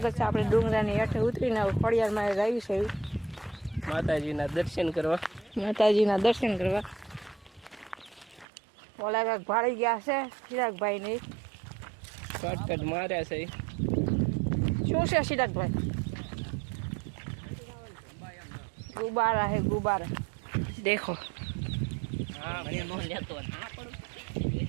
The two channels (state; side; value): drops out; left; at 8.5 s